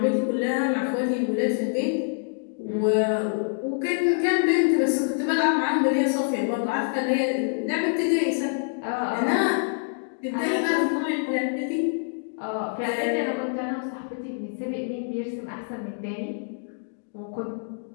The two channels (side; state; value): right; silent; digital silence